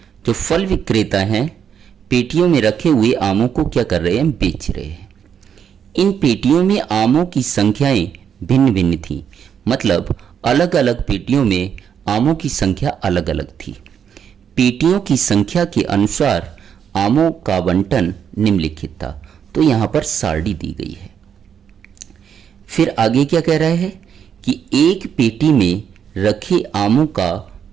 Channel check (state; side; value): quieter; left; 8.0 dB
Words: जो फल विक्रेता हैं पेटियों में रखे हुए आमों को क्या कर रहे हैं, बेच रहे हैं। इन पेटियों में आमों की संख्याएं भिन्न भिन्न थी, मतलब अलग अलग पेटियों में आमों की संख्या अलग अलग थी। पेटियों की संख्या के अनुसार आमों का आवंटन निम्नलिखित था। तो यहाँ पर सारणी दी गई है। फिर आगे क्या कह रहा है कि एक पेटी में रखे आमों का